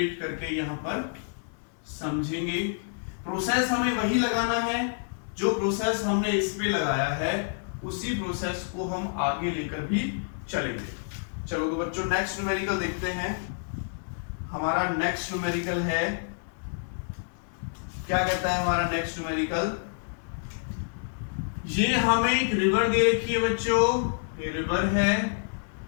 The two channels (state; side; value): silent; right; 59 dB below the other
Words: करके यहां पर समझेंगे। प्रोसेस हमें वही लगाना है जो प्रोसेस हमने इस पे लगाया है, उसी प्रोसेस को हम आगे लेकर भी चलेंगे। चलो तो बच्चों नेक्स्ट न्यूमेरिकल देखते हैं। हमारा नेक्स्ट न्यूमेरिकल है क्या कहता है हमारा नेक्स्ट न्यूमेरिकल, ये हमें एक रिवर दे रखी है बच्चों, ये रिवर है